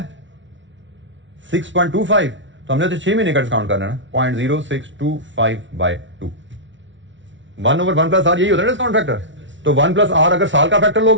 6.25, तो हमने तो 6 महीने का डिस्काउंट करना है ना, 0.0625/2। 1/1 प्लस आर यही होता है डिस्काउंट फैक्टर। तो 1 प्लस आर अगर साल का फैक्टर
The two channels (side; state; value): left; late; 0.55 ms